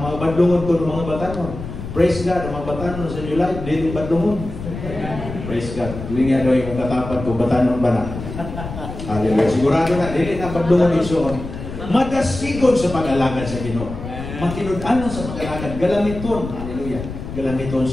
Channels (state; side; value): noise; left; rumble, 9 dB below the sound